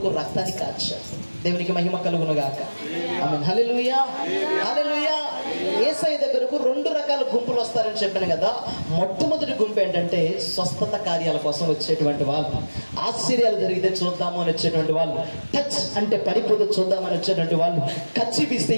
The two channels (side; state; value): both; inverted; correlation -1.00